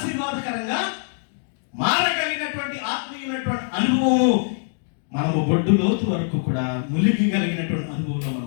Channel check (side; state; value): right; silent; digital silence